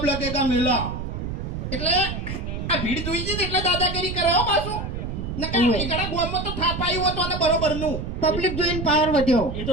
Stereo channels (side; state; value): right; noise; rumble, 5 dB below the sound